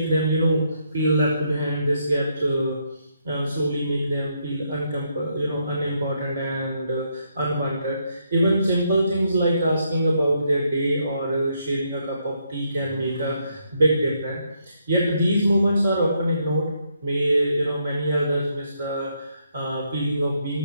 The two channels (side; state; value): both; inverted; correlation -0.76